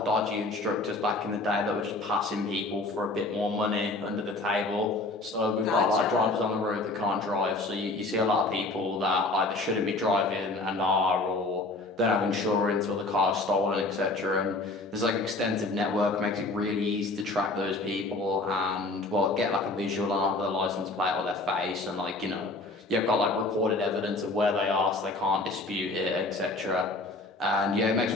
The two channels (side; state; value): right; quieter; 3.0 dB